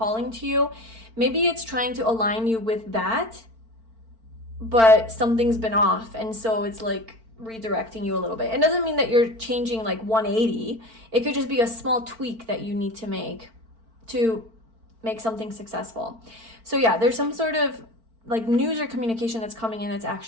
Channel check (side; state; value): left; late; 4.4 ms